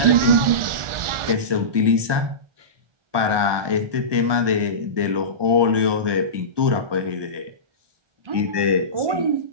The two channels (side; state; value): left; late; 1.2 ms